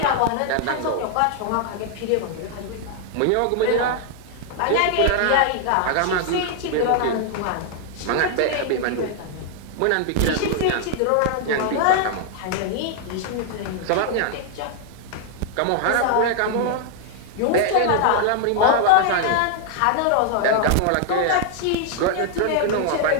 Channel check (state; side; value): different; both; correlation 0.00